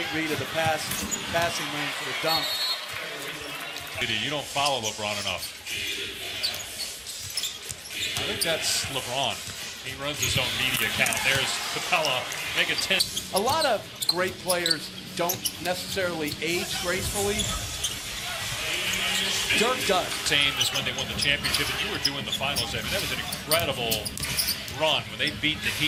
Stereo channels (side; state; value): both; identical; correlation 1.00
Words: read of the passing lane for the dunk. You don't follow LeBron enough. I think that's LeBron. He runs his own media account. There's Capella, make it 10. A lot of great players don't necessarily age gracefully. Dirk does. Same as when they won the championship, and you were doing the finals. I mean, that was an incredible run when they beat the